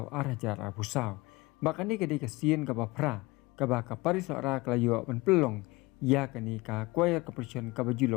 arajar abusau. Bakani kadi kasien ka bapra ka ba kapari sora kalayo ben pelong ya kani ka choir competition ka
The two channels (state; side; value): quieter; right; 22.6 dB